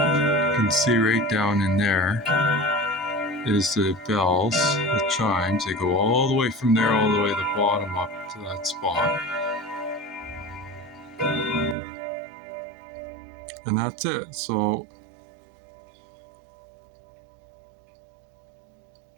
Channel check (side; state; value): left; drops out; at 11.8 s